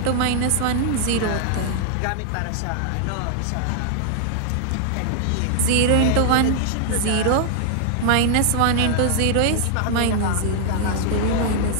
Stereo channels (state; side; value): different; both; correlation 0.00